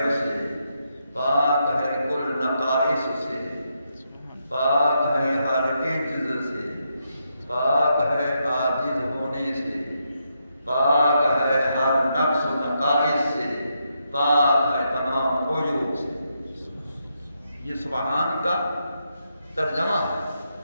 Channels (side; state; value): both; inverted; correlation -0.81